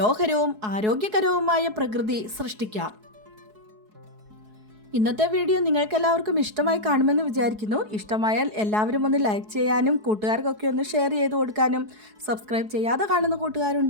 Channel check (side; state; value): left; late; 4.7 ms